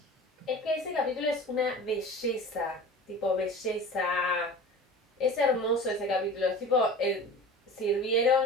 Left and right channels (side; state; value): both; normal; correlation 0.37